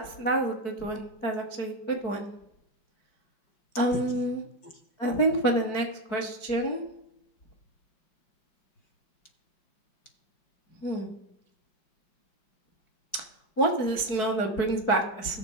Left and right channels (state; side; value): late; right; 4.6 ms